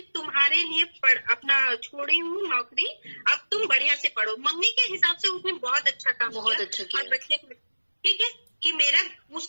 तुम्हारे लिए अपना छोड़ी हूँ नौकरी, अब तुम बढ़िया से पढ़ो। मम्मी के हिसाब से उसने बहुत अच्छा काम बहुत अच्छा किया। और बच्चे ठीक है कि मेरा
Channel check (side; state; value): both; inverted; correlation -1.00